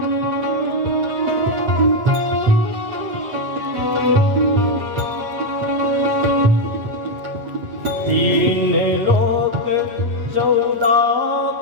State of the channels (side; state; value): left; late; 8.4 ms